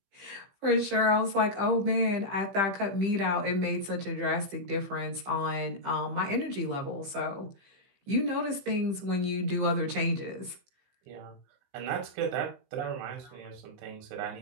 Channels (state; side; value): late; left; 15 ms